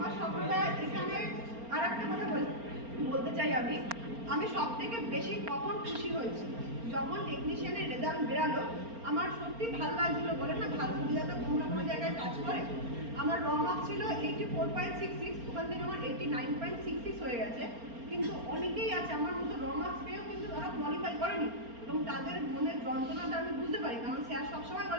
স্বপ্নটা এখানে আর একটা কথা বলতে চাই, আমি সব থেকে বেশি কখন খুশি হয়েছি যখন টেকনিশিয়ানের রেজাল্ট বেরালো। আমার সত্যি ভালো লাগছিল, বলে না ভাগ্য বিধাতা কোনো না কোনো জায়গায় কাজ করে। আমার র মার্কস ছিল 84.66, ওখান থেকে আমার 89.66 হয়ে গেছে। কিন্তু অনেকেই আছে আমার মতো র মার্কস পেয়েও কিন্তু তারা কোয়ালিফাই করেনি, এবং তাদের মনের যন্ত্রণাটা আমি বুঝতে পারি, কারণ স্যার সবসময়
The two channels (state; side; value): late; left; 4.3 ms